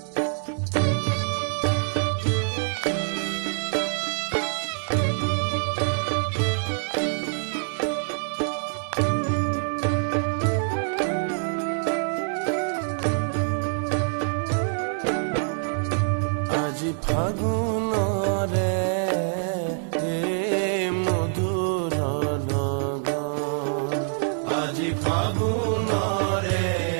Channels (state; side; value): silent; left; 60 dB below the other